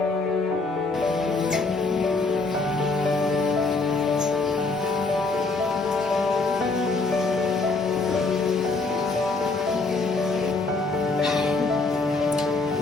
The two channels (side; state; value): right; quieter; 3.7 dB